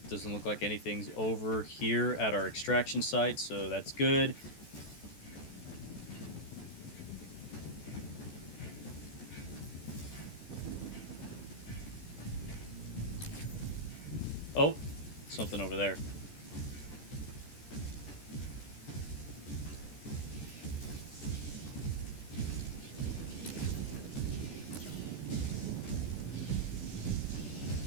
Doesn't look like anything's over here at our extraction site, so that's good. Oh, something over there.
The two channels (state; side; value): late; right; 14 ms